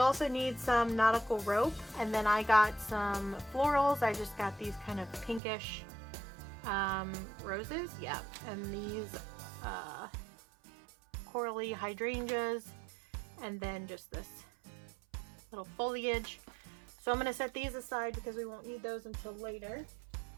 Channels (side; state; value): left; drops out; at 5.4 s